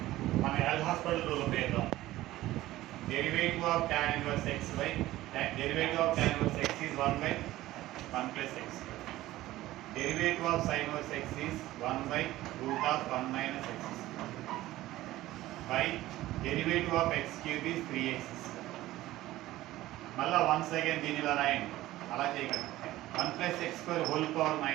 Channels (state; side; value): quieter; left; 16.2 dB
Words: మన హెల్త్ హాస్పిటల్ రూల్ ఉపయోగం derivative of tan inverse x by derivative of tan inverse x is 1 by 1 plus x. Derivative of sin inverse x is 1 by root of 1 minus x by derivative of x cube is 3x. మళ్ళా once again దీని ఇలా రాయండి, అలా చేయకండి. 1 plus x square whole power